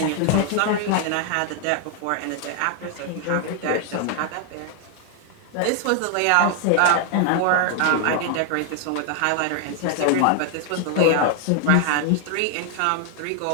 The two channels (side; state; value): both; different; correlation 0.00